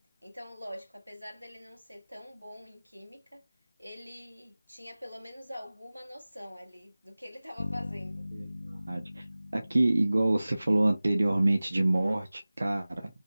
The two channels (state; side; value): inverted; both; correlation -0.98